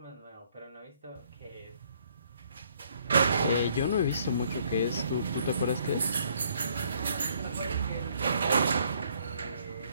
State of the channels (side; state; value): both; inverted; correlation -0.65